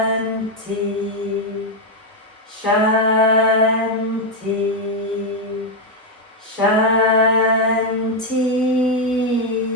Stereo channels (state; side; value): normal; both; correlation 0.03